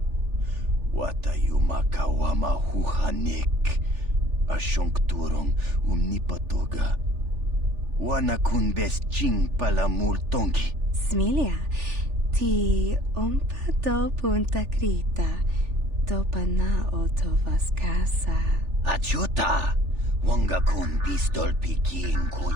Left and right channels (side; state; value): left; late; 3.4 ms